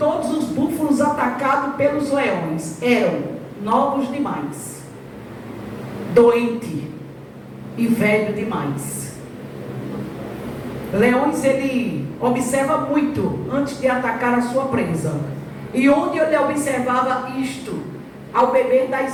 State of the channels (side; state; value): both; identical; correlation 1.00